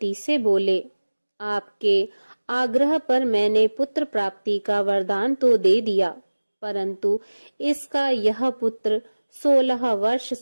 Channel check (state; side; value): inverted; both; correlation -1.00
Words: से बोले, आपके आग्रह पर मैंने पुत्र प्राप्ति का वरदान तो दे दिया, परंतु इसका यह पुत्र 16 वर्ष